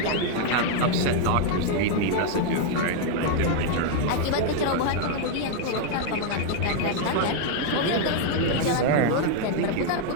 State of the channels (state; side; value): different; both; correlation 0.00